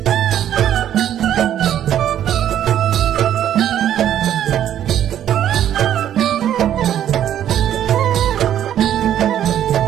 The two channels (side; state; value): left; quieter; 10.8 dB